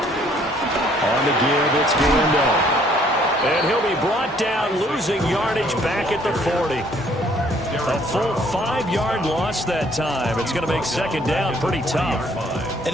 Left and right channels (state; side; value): normal; both; correlation 0.62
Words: On the give, it's Galindo. And he'll be brought down, losing yardage back at the 40. A full 5-yard loss that time. It's going to make second down pretty tough. An